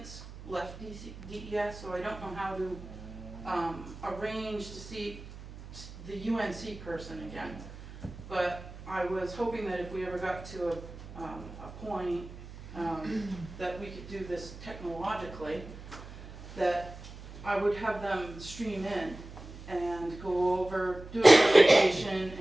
left DES, so I don't know how to arrange to see the UNC person again. But I was hoping that if we ever got to a point that we could do this technologically, that I would have them stream in and go over, do a presentation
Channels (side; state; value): right; noise; hum, 14 dB below the sound